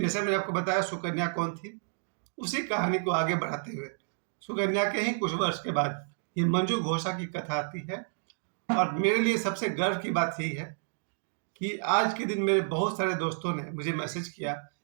जैसे मैंने आपको बताया सुकन्या कौन थी, उसी कहानी को आगे बढ़ाते हुए सुकन्या के ही कुछ वर्ष के बाद ये मंजू घोषा की कथा आती है। और मेरे लिए सबसे गर्व की बात यही है कि आज के दिन मेरे बहुत सारे दोस्तों ने मुझे मैसेज किया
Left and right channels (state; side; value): silent; left; digital silence